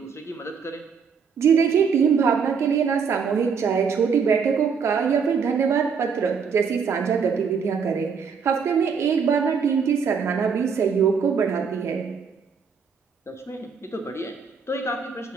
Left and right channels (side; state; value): left; quieter; 6.0 dB